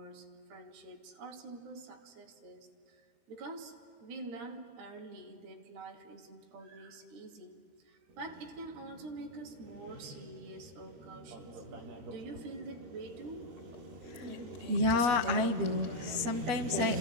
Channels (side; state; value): left; late; 13 ms